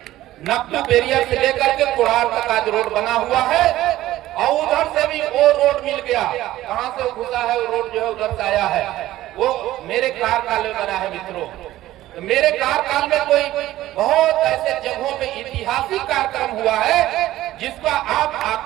नकल बैरियर से लेकर के कुड़ार तक आज रोड बना हुआ है। और उधर से भी वो रोड मिल गया। कहां से घुसा है वो रोड, जो है उधर से आया है। वो मेरे कार्यकाल में बना है मित्रों। तो मेरे कार्यकाल में कोई बहुत ऐसे जगहों पे ऐतिहासिक कार्यक्रम हुआ है जिसका आप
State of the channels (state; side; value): quieter; left; 15.0 dB